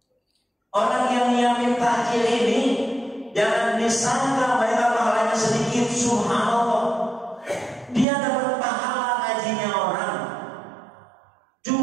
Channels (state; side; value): drops out; left; at 8.1 s